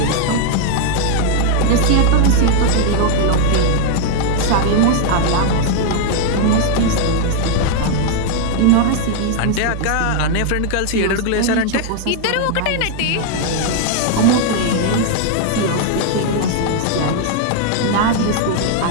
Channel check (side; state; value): both; different; correlation 0.00